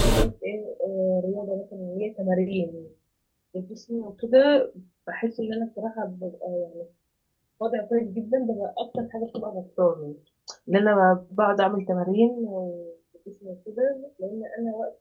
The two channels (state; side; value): identical; both; correlation 1.00